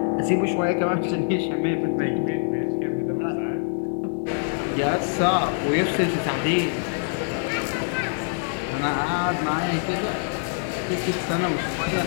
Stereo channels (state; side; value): silent; right; digital silence